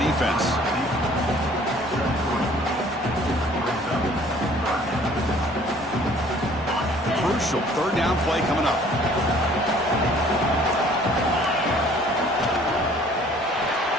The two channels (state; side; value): normal; both; correlation 0.55